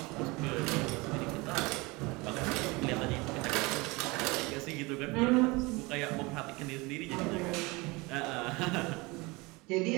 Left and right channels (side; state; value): left; quieter; 24.6 dB